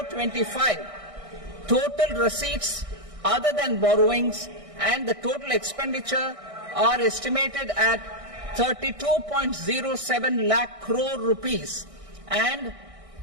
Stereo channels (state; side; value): late; left; 1.6 ms